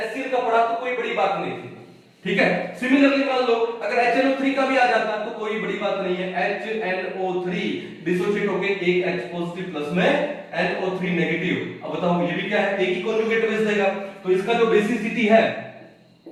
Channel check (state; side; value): identical; both; correlation 1.00